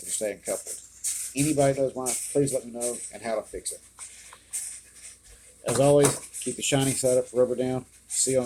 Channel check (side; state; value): both; identical; correlation 1.00